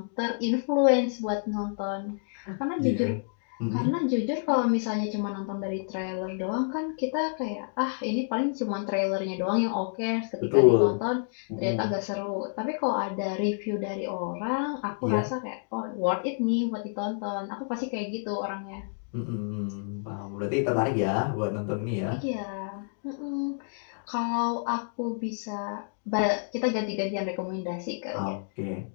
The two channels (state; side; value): silent; right; digital silence